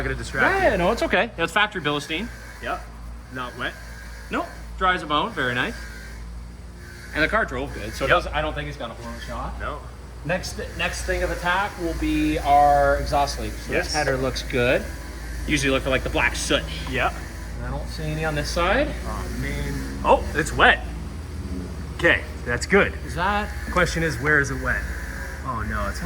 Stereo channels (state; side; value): identical; both; correlation 1.00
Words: gonna distract Yeah, no, it's okay. It's factory Bilstein. you. Yep. Not wet. Nope. Dry as a bone. Very nice. And the car drove good, so it doesn't, I don't think it's got a horn shot. No. Next thing of attack will be our exhaust leak. So Yes. this header looks good. Usually look for like the black soot. Yeah. I don't see any on this side. Oh, man. Oh, it's wet. Okay, that's good. Is that? Question is, where is it wet? Oh no, it's Why